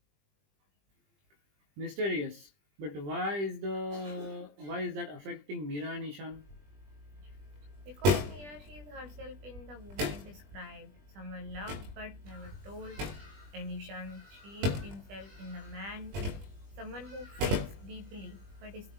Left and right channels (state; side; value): late; left; 20 ms